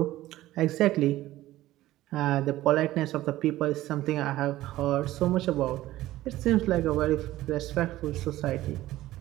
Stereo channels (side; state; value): left; quieter; 15.7 dB